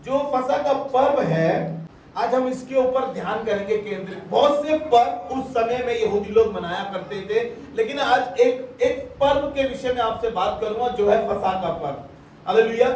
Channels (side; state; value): both; identical; correlation 1.00